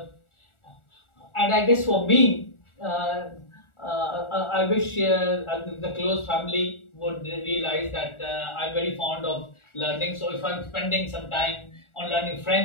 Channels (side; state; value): right; late; 1.4 ms